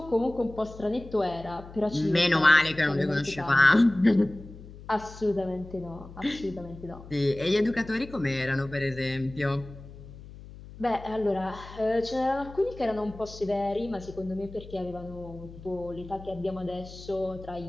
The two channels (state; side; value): noise; left; hum, 16 dB below the sound